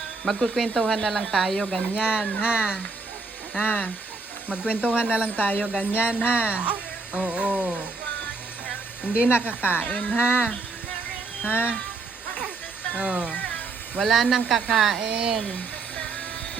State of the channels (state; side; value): quieter; left; 3.9 dB